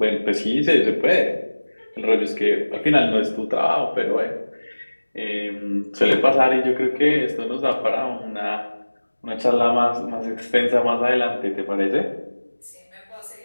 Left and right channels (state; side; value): inverted; both; correlation -1.00